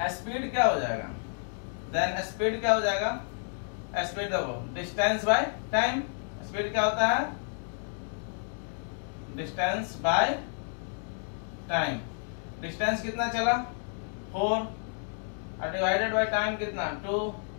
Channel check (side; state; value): right; silent; 57 dB below the other